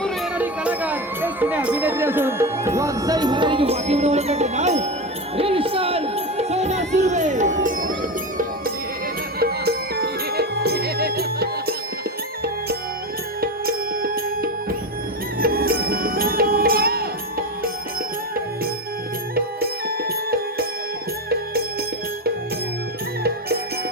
येणारी कलाकार एक जुने अभिनेत्री असून वागसाई महाराजांची वाटी बनवण्याचे नाव हे विशाल सोना सुर्वे.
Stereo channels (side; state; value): both; normal; correlation 0.19